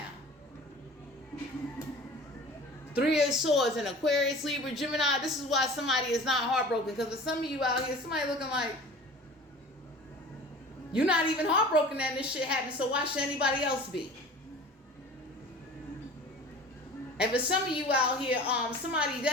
Three of Swords and Aquarius, Libra, Gemini. This is why somebody is not heartbroken. Because for some of you out here, somebody looking like you're not even heartbroken that this shit happened. So why should anybody else be? And for some of you out here, somebody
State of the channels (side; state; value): both; normal; correlation 0.42